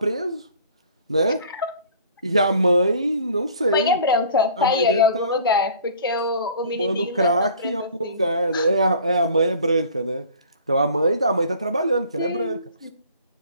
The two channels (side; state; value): both; inverted; correlation -0.49